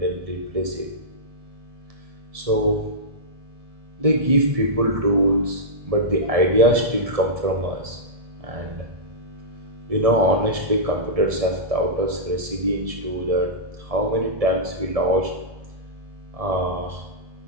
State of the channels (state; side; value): late; left; 1.7 ms